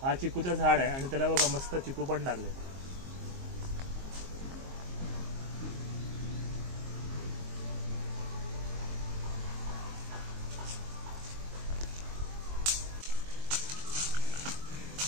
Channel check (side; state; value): left; late; 22 ms